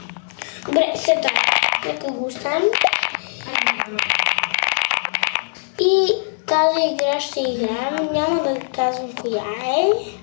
Добре, сета. Нека го оставим. И тази игра ще играем. Няма да казвам коя е.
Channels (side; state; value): right; silent; 65 dB below the other